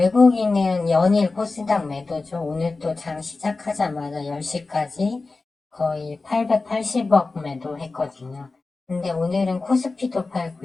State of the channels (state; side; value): quieter; right; 3.7 dB